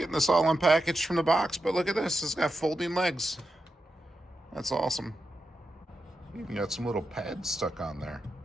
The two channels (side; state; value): both; normal; correlation 0.88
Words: this all unpackaged from the box, but look at this. It's got folding legs. That's awesome. Even got some little pads stuck on there.